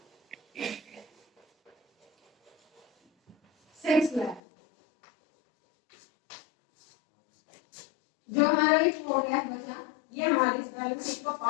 6 lakh. जो हमारा एक 4 लाख बचा, ये हमारी इस बैलेंस शीट का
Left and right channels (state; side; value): drops out; right; at 4.4 s